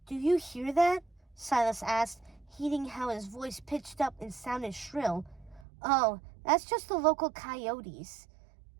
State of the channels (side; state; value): left; drops out; at 5.7 s